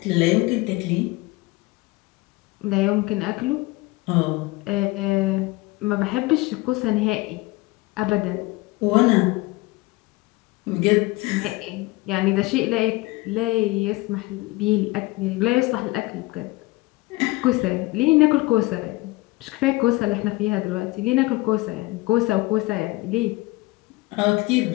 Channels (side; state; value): right; quieter; 21.7 dB